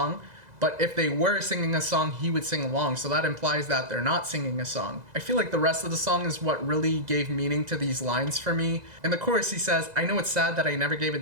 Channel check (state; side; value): late; left; 2.0 ms